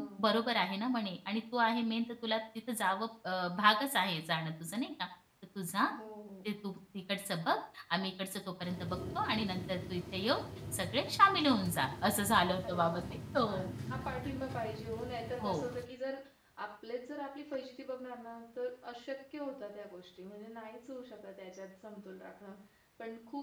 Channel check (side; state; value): both; identical; correlation 1.00